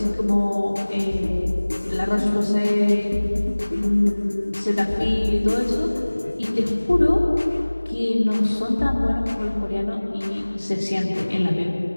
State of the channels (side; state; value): both; inverted; correlation -1.00